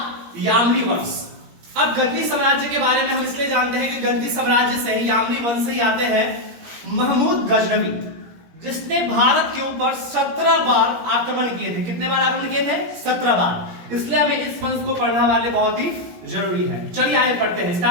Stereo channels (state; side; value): late; left; 17 ms